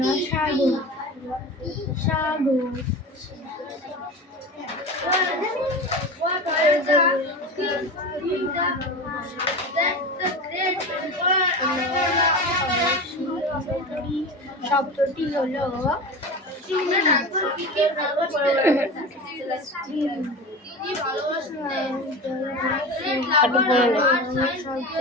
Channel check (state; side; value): normal; both; correlation 0.29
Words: সাগর, সাগর। শব্দটি হলো